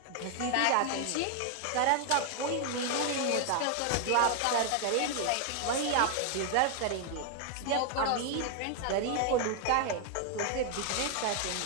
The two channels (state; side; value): different; both; correlation 0.00